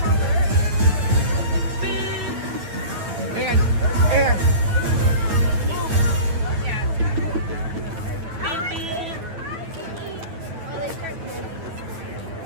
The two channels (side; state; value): left; late; 9.0 ms